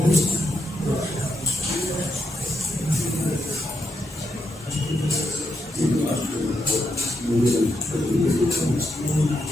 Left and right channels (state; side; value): normal; both; correlation 0.82